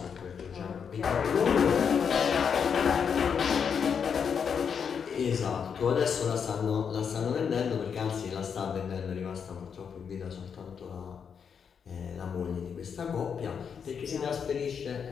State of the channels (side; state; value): right; quieter; 6.9 dB